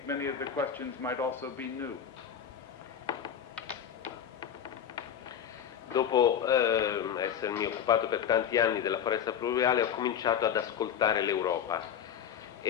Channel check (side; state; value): right; quieter; 8.7 dB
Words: many of the questions might also be new. Dopo essermi occupato per tanti anni della foresta pluviale, ho cominciato ad ascoltare l'Europa